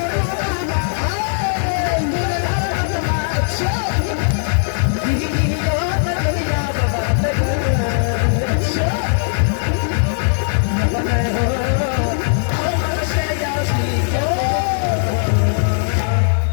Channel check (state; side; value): silent; right; digital silence